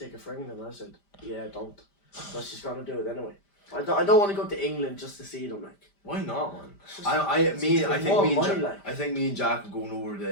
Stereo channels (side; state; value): right; late; 5.0 ms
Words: for England? And I said, yeah, don't. But she's gonna do it anyway. I don't want to go to England just to see them like. why not, man? It's just- I think more me and money, Jack, like. I think me and Jack are going over